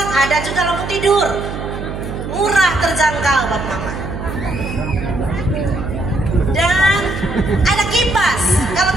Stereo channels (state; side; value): noise; right; hum, 7 dB below the sound